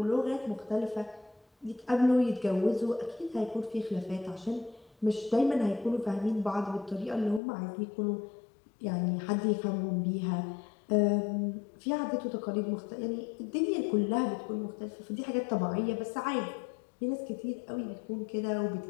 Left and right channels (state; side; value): drops out; right; at 7.4 s